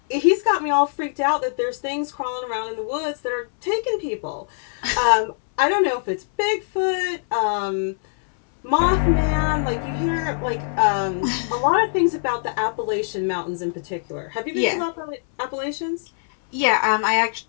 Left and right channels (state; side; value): silent; right; 64 dB below the other